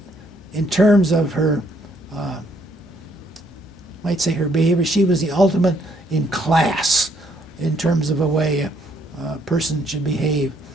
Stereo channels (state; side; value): normal; both; correlation 0.69